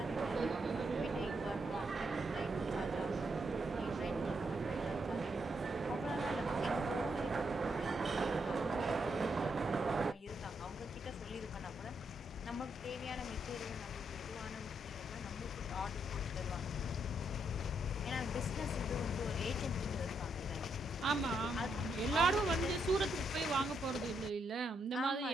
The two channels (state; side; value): normal; both; correlation 0.78